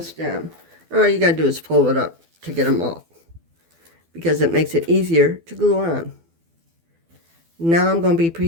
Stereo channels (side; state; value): left; late; 12 ms